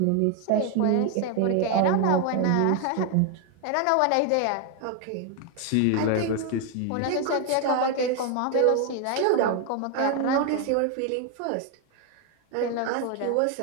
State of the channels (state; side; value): different; both; correlation 0.01